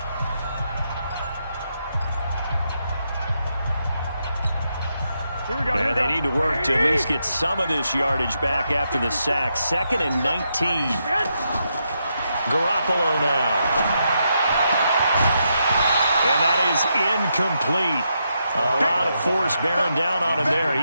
And they need to work to at least get some of this yardage back after the sack. 2nd and 19. Garoppolo now. And that is incomplete. A lot of force bearing down on him there. He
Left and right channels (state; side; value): inverted; both; correlation -0.82